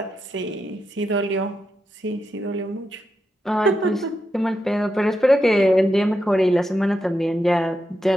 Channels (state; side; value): normal; both; correlation 0.85